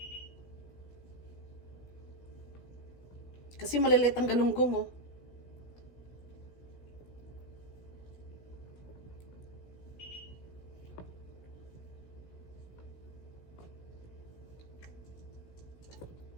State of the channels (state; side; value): late; right; 16 ms